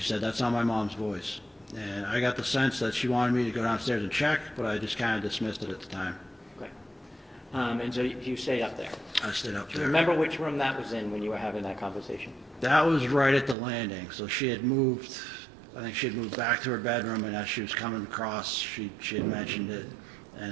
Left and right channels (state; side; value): drops out; left; at 13.6 s